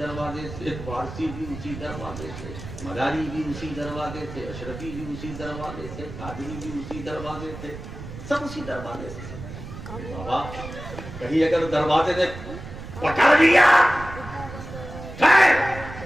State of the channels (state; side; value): noise; right; rumble, 11 dB below the sound